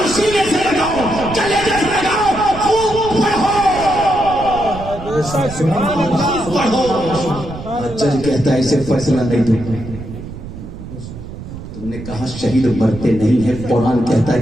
सीने से लगाओ, कलेजे से लगाओ, खूब पढ़ो, पढ़ो। जज कहता है इसे फैसला नहीं दूंगा, कहा शहीद मरते नहीं है, कुरान कहता है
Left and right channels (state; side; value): noise; right; rumble, 11 dB below the sound